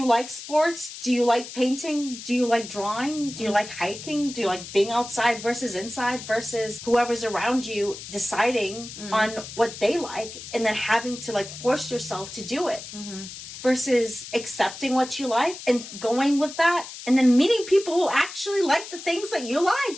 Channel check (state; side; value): noise; left; hiss, 12 dB below the sound